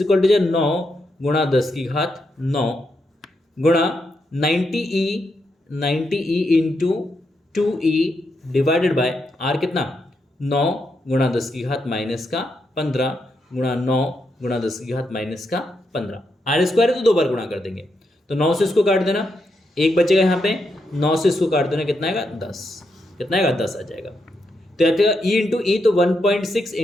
इक्वल टू 9 गुणा 10⁹ गुणा 90e into 2e divided by R कितना, 9 गुणा 10⁻⁻15 गुणा 9 गुणा 10⁻⁻15। R स्क्वायर है तो 2 बार गुणा कर देंगे, तो 9 से इसको काट देना, 1 बचेगा यहाँ पे, 9 से इसको काट देना, कितना आएगा, 10। कितना आएगा, 10 आ जाएगा। तो e इंटू ई, तो 1.6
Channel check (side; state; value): both; normal; correlation 0.82